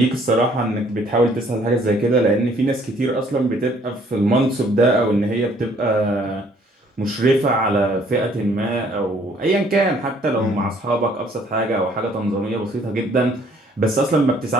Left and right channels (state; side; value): normal; both; correlation 0.61